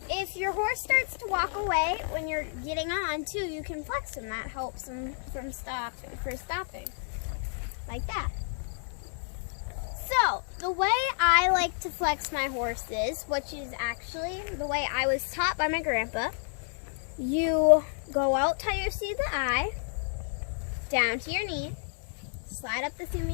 if your horse starts to walk away when you're getting on too, you can flex him. That helps him from stopping. Like that. So, the way I like to flex my horses, which is actually the way I was taught by my grandpa, you go out till you see the eye, down to your knee, slide up the seam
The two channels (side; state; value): right; silent; 58 dB below the other